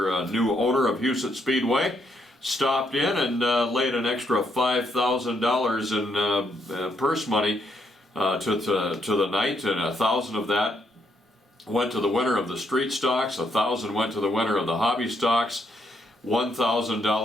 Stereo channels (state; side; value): normal; both; correlation 0.75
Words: new owner of Huset Speedway stopped in and laid an extra $5,000 in purse money to the night, and $1,000 of that went to the winner of the street stocks, $1,000 went to the winner of the hobby stocks,